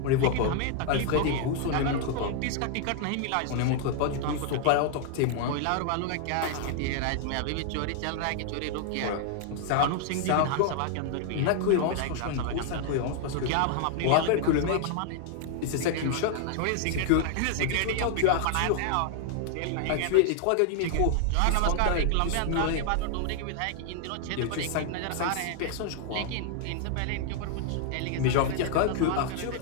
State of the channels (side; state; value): both; different; correlation 0.00